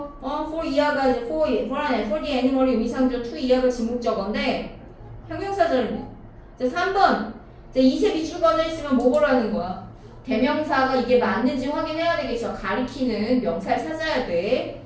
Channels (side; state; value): both; identical; correlation 1.00